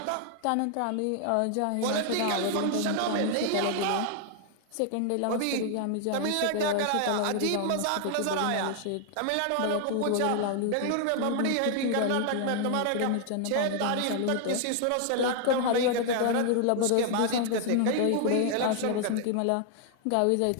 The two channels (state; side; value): different; both; correlation 0.00